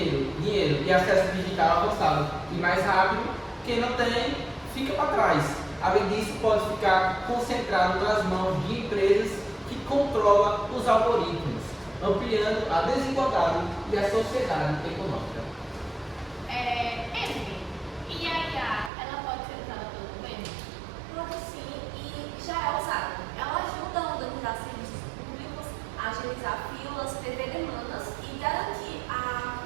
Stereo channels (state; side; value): drops out; left; at 18.9 s